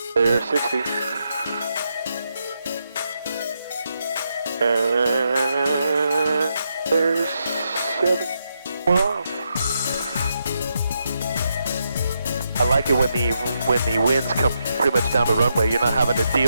There's 60. And there's 7. Wow. I like it when the winds come pretty much down the runway. You're not having to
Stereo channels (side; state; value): both; inverted; correlation -0.82